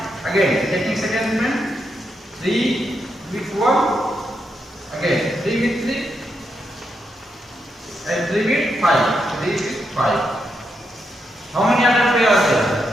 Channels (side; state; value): both; normal; correlation 0.82